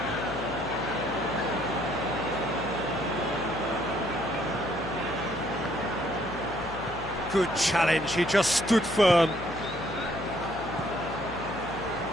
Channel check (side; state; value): left; noise; hum, 14 dB below the sound